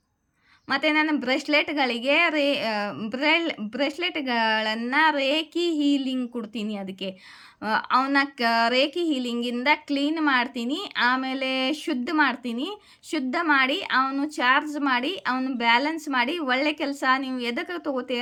ಮತ್ತು ನಾನು ಬ್ರೇಸ್ಲೆಟ್ಗಳಿಗೆ ಬ್ರೇಸ್ಲೆಟ್ಗಳನ್ನು ರೇಖಿ ಹೀಲಿಂಗ್ ಕೊಡ್ತೀನಿ. ಅದಕ್ಕೆ ಅವನ್ನ ರೇಖಿ ಹೀಲಿಂಗಿಂದ ಕ್ಲೀನ್ ಮಾಡ್ತೀನಿ, ಆಮೇಲೆ ಶುದ್ಧ ಮಾಡಿ ಅವನು ಚಾರ್ಜ್ ಮಾಡಿ ಅವನು ಬ್ಯಾಲೆನ್ಸ್ ಮಾಡಿ ಒಳ್ಳೆ ಕೆಲಸ ನೀವು ಎದಕ್ಕೆ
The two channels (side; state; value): both; identical; correlation 1.00